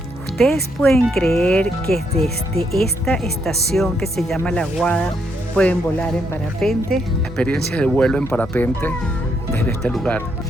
¿Ustedes pueden creer que desde esta estación que se llama La Guada pueden volar en parapente? Experiencia de vuelo en parapente desde este lugar.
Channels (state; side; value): normal; both; correlation 0.76